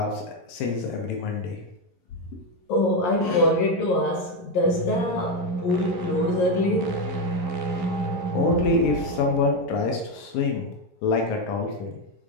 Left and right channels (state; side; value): late; right; 11 ms